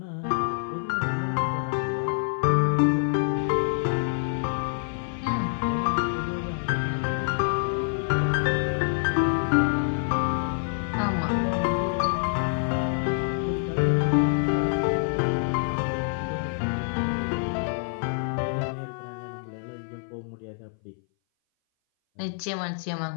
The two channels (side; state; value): right; silent; 58 dB below the other